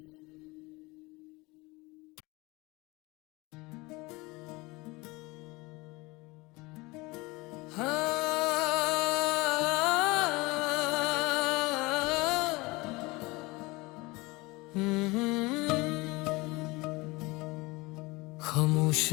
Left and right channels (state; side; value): quieter; right; 23.5 dB